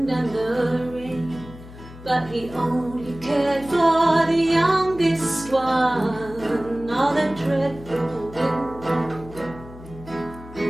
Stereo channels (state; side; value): noise; left; hum, 17 dB below the sound